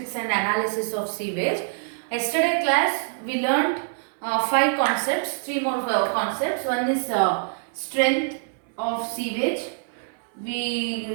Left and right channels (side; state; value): left; silent; 61 dB below the other